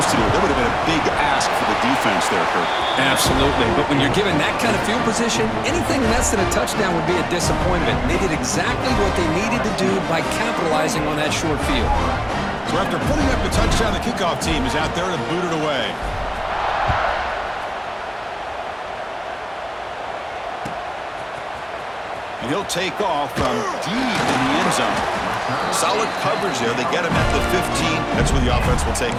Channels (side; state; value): both; identical; correlation 1.00